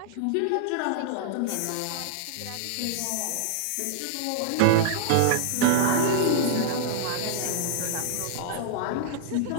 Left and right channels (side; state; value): both; different; correlation -0.01